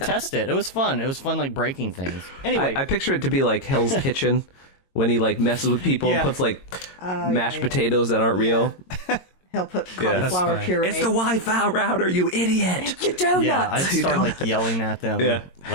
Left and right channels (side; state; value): right; late; 22 ms